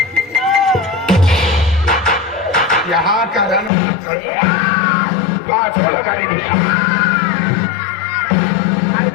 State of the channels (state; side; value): drops out; right; at 3.7 s